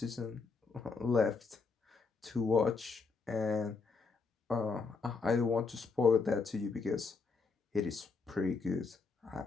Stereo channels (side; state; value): right; quieter; 4.5 dB